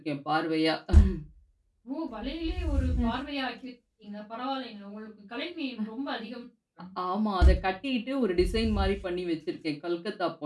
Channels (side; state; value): both; identical; correlation 1.00